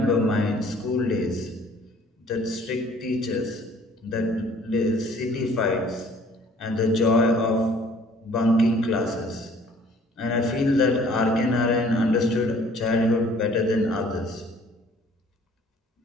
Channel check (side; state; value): both; normal; correlation 0.55